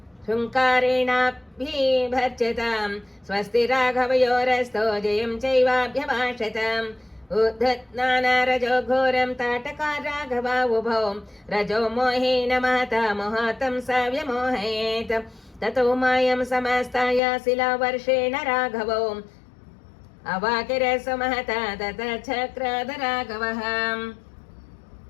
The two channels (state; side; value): drops out; right; at 17.2 s